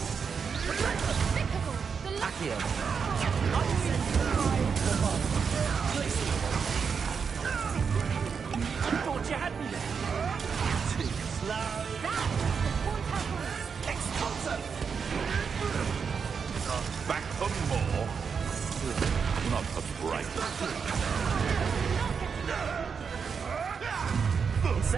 Accio. You thought you had me there. Too slow. Expulso. Back for more. Not the bright.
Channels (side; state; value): left; quieter; 6.1 dB